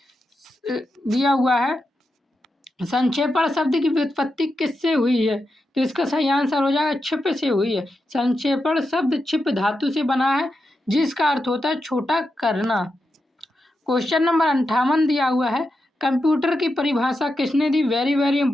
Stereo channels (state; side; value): normal; both; correlation 0.87